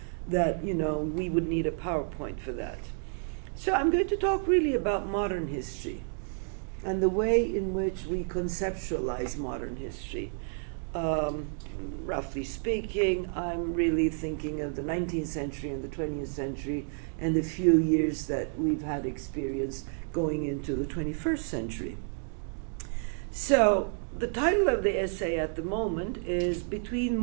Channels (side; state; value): left; silent; 58 dB below the other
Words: that, we would need a PowerPoint for that. So I'm going to talk really about modern history and the way in which we conceptualize modern history. Roughly speaking, I'm really thinking of the 19th century and the 20th century and the few years that we've had experience going into the 21st century. So the title of the essay at the moment is Between